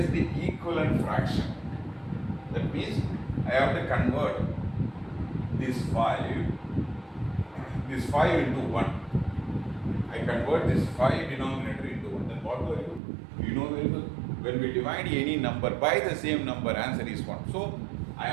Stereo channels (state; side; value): drops out; left; at 13.0 s